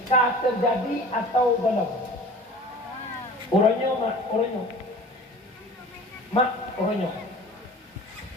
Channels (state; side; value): normal; both; correlation 0.42